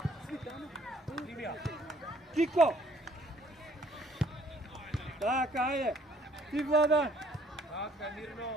Кико! Така, ајде! Ти, Владан! Така, мирно.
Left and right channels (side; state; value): both; normal; correlation 0.61